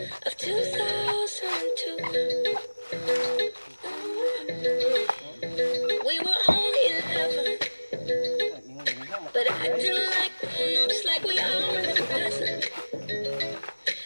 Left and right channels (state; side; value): inverted; both; correlation -1.00